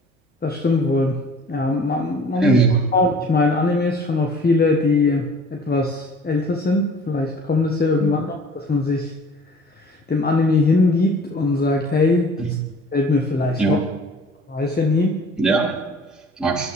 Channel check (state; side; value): normal; both; correlation 0.49